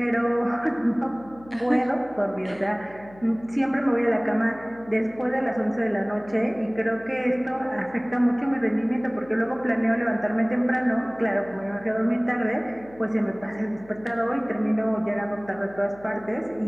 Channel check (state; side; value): noise; left; hum, 22 dB below the sound